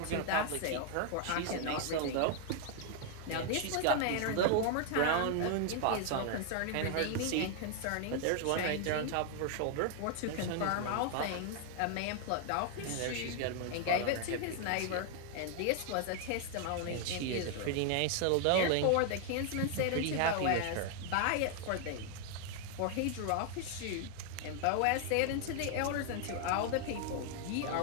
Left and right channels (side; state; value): both; different; correlation 0.00